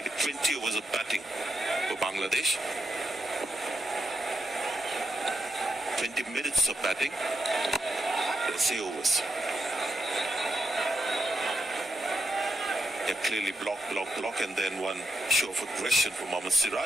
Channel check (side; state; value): both; normal; correlation 0.84